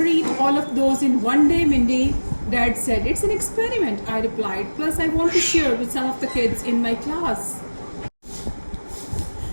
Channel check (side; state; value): both; inverted; correlation -1.00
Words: eat all of those in one day, Mindy. Dad said, it's an experiment, I replied. Plus, I want to share with some of the kids in my class.